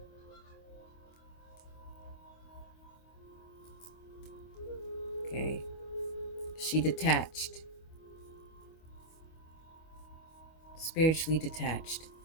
She detached, spiritually detached.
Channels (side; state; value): right; late; 25 ms